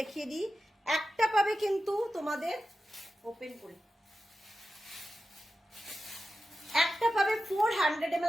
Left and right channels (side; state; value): both; normal; correlation 0.92